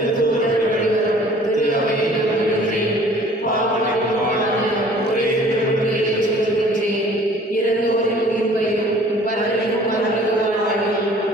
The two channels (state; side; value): normal; both; correlation 0.51